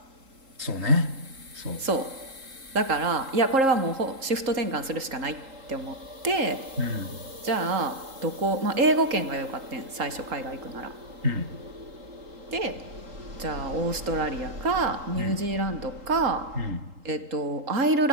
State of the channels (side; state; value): left; late; 3.8 ms